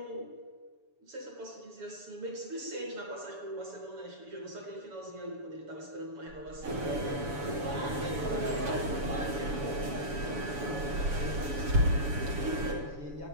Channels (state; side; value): late; left; 7.0 ms